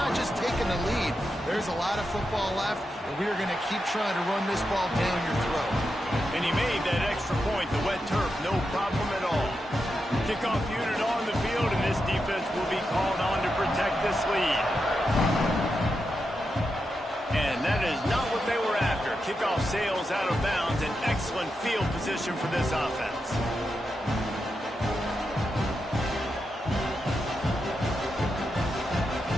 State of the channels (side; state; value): both; normal; correlation 0.87